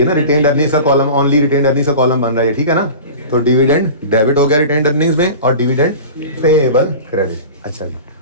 ना रिटेन्ड अर्निंग्स का कॉलम, ओनली रिटेन्ड अर्निंग्स का कॉलम बन रहा है, ठीक है ना? तो डिविडेंड डेबिट हो गया रिटेन्ड अर्निंग्स में और डिविडेंड पेएबल क्रेडिट। अच्छा जी,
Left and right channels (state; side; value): inverted; both; correlation -0.35